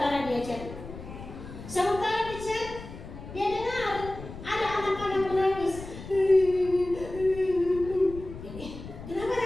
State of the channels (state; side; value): noise; left; rumble, 13 dB below the sound